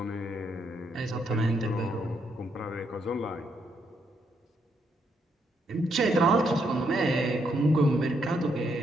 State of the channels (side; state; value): both; normal; correlation 0.76